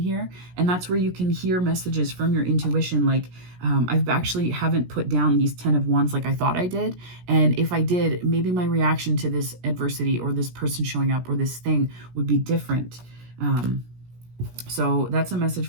here. And that's where you can hear messages from your intuition. Like, I've actually haven't put down these 10 of Wands like I thought I did. And if I did, maybe my reaction to this adversity or this person showing up or this thing would be different. So that's a message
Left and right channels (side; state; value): left; late; 17 ms